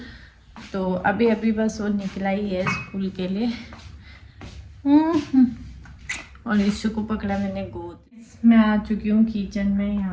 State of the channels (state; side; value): identical; both; correlation 1.00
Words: तो अभी अभी बस वो निकला ही है स्कूल के लिए। और इशू को पकड़ा मैंने गोद। मैं आ चुकी हूँ किचन में